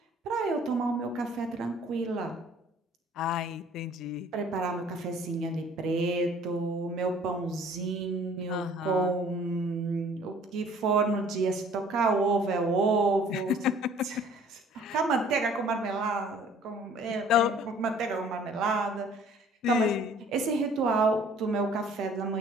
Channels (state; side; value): normal; both; correlation 0.54